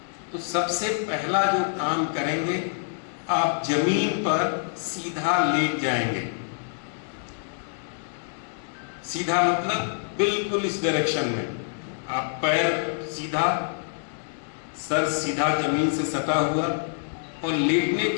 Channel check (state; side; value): silent; right; digital silence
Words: तो सबसे पहला जो काम करेंगे, आप जमीन पर सीधा लेट जाएंगे। सीधा मतलब बिल्कुल इस डायरेक्शन में, आप पैर सीधा, सर सीधा जमीन से सटा हुआ, और लेटने